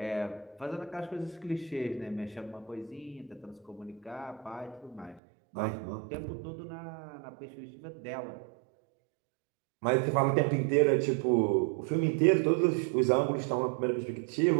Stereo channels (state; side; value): drops out; left; at 5.2 s